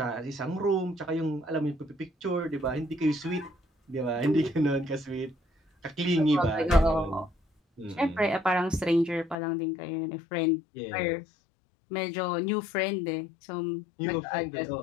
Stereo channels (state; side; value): drops out; right; at 9.3 s